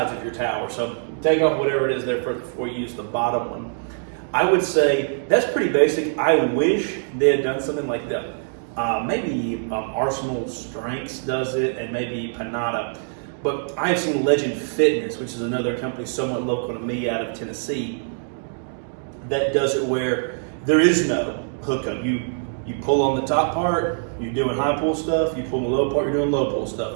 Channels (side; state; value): left; silent; digital silence